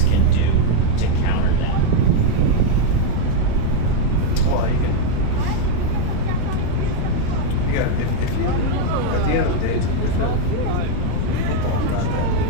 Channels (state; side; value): different; both; correlation 0.01